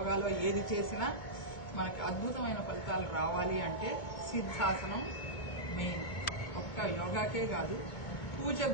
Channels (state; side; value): late; right; 2.2 ms